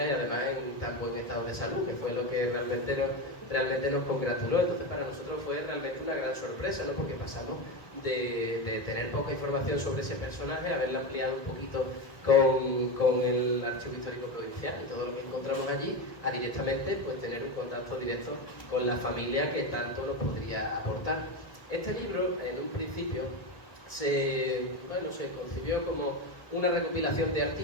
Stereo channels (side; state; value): right; late; 1.4 ms